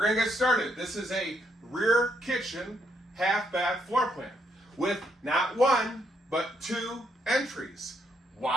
to get started. This is a rear kitchen half bath floor plan with not one but two entries.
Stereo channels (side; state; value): both; normal; correlation 0.75